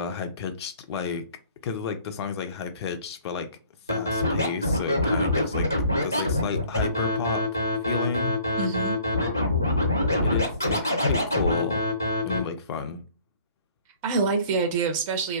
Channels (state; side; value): inverted; both; correlation -0.54